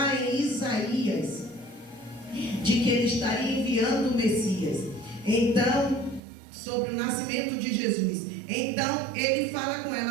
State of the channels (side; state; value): left; drops out; at 6.2 s